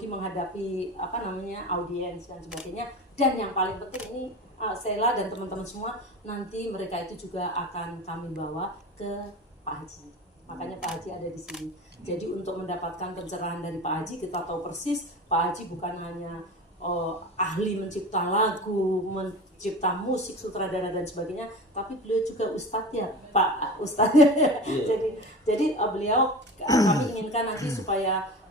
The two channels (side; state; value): both; normal; correlation 0.32